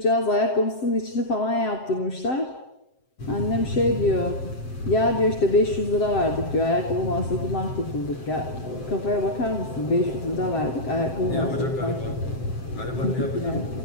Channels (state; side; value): late; right; 7.7 ms